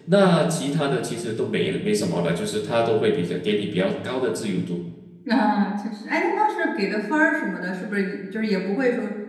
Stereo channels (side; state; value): both; identical; correlation 1.00